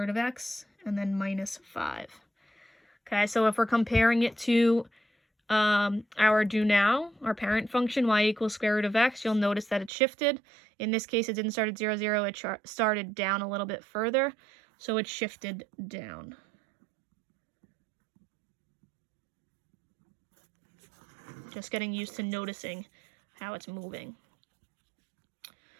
of x, and then minus 5. Okay, so if we're comparing it to our do now, our parent function, y equals square root of x, you'll notice that it shifted. In this case, it didn't start at 0, 0, it started down a little bit further. So it shifted down. Just getting used to noticing how it's moving.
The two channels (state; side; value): drops out; left; at 9.9 s